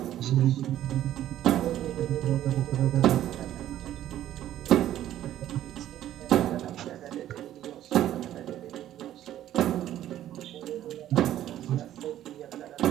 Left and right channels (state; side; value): quieter; left; 12.4 dB